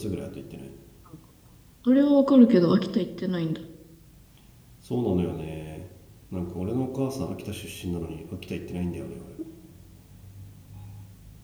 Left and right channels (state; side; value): identical; both; correlation 1.00